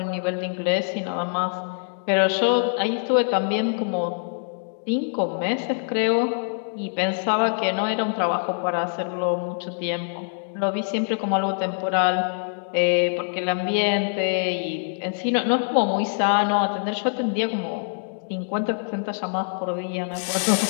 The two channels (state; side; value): silent; right; digital silence